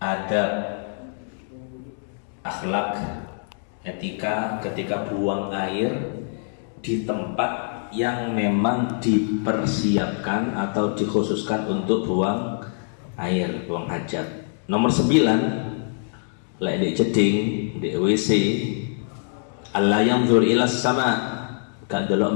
adab, akhlak, etika ketika buang air di tempat yang memang dipersiapkan atau dikhususkan untuk buang air, buang hajat. Nomor 9, lek di jeding, di WC, Allah yanzur ilas sama, gak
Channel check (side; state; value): right; silent; digital silence